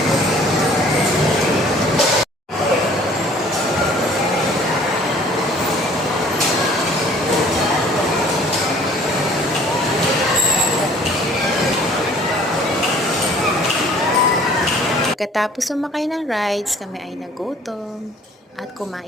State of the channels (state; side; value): normal; both; correlation 0.53